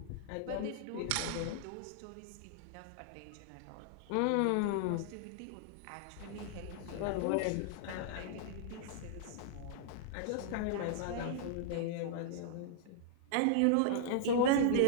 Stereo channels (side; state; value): both; different; correlation -0.01